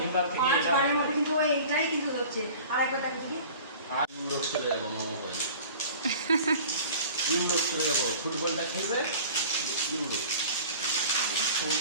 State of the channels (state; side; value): inverted; both; correlation -0.42